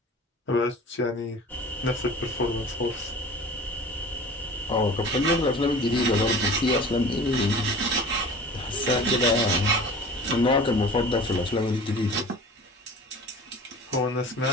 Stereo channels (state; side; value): normal; both; correlation 0.41